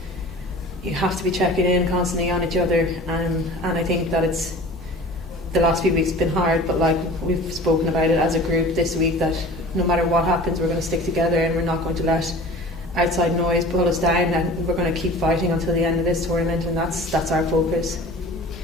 you have to be checking in constantly on each other, and I think that it's the last few weeks have been hard, but like, we've spoken about it as a group this week, that no matter what happens, we're going to stick together, and we're not going to let outside noise pull us down, and we're going to keep fighting until the end of this tournament, and that's our focus.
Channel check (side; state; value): both; normal; correlation 0.41